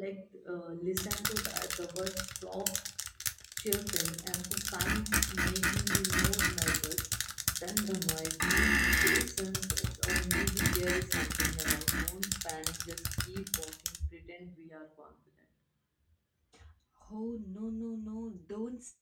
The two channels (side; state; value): both; identical; correlation 1.00